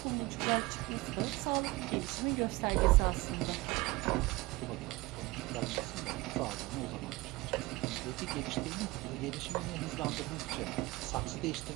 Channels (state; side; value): quieter; left; 21.6 dB